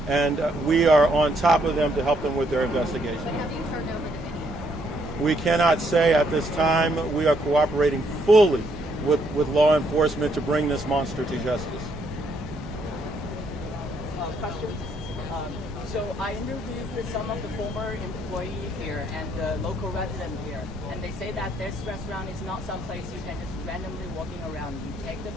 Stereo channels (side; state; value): both; normal; correlation 0.72